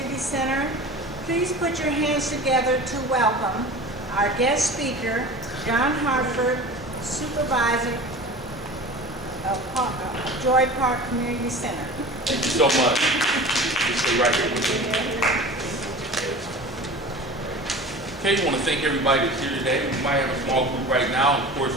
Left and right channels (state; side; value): normal; both; correlation 0.36